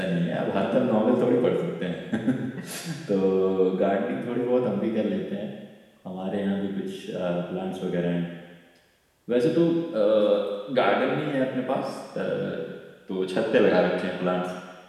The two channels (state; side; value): identical; both; correlation 1.00